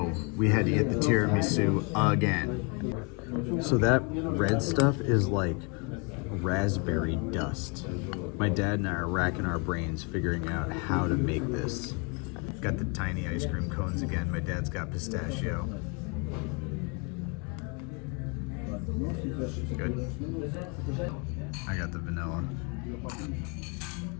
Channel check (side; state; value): right; quieter; 33.7 dB